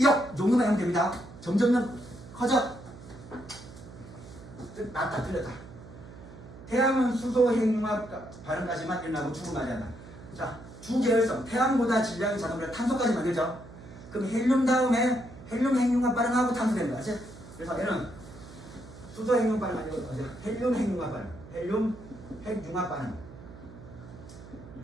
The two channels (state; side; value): noise; right; hum, 17 dB below the sound